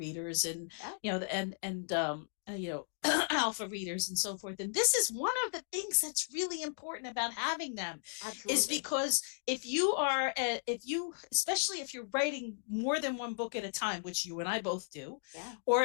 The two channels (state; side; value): silent; right; digital silence